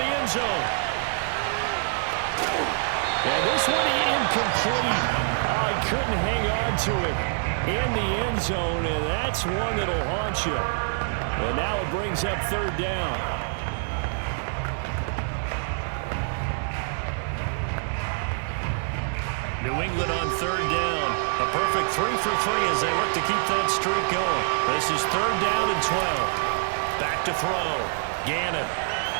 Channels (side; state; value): left; silent; digital silence